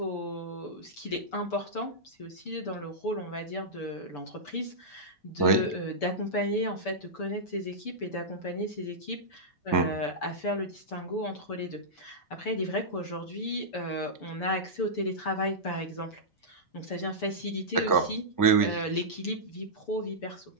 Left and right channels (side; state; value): right; late; 6.9 ms